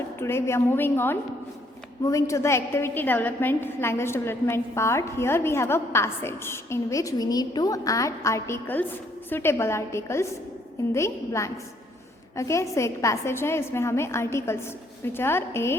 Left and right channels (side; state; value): both; normal; correlation 0.67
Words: today we are moving to the activity development, language development part. Here we have a passage in which we need to add articles, suitable articles in the blanks. Okay so एक passage है, इसमें हमें articles which are a